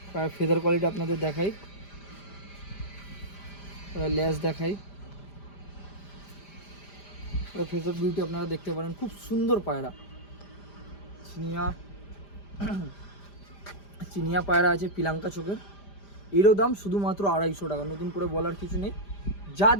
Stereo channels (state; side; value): late; right; 5.0 ms